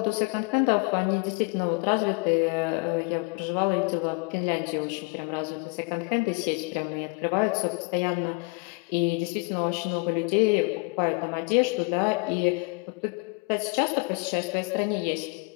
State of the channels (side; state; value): right; quieter; 30.8 dB